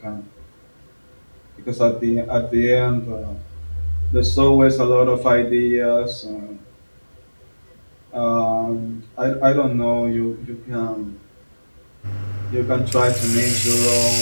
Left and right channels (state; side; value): inverted; both; correlation -1.00